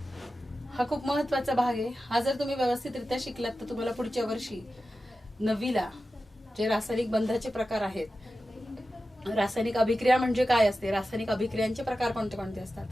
हा खूप महत्वाचा भाग आहे. हा जर तुम्ही व्यवस्थितरित्या शिकलात तर तुम्हाला पुढच्या वर्षी 9वीला जे रासायनिक बंधाचे प्रकार आहेत, रासायनिक अभिक्रिया म्हणजे काय असते, रासायनिक अभिक्रियांचे प्रकार कोणते कोणते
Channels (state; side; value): normal; both; correlation 0.93